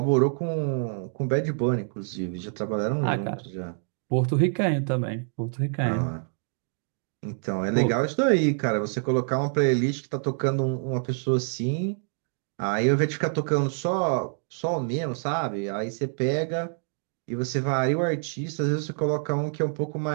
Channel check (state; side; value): silent; left; 56 dB below the other